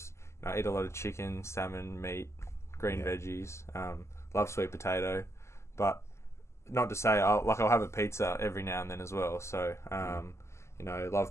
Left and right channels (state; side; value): late; right; 0.13 ms